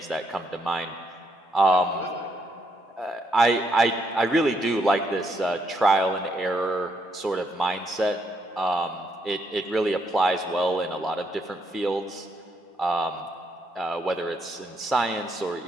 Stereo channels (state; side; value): normal; both; correlation 0.75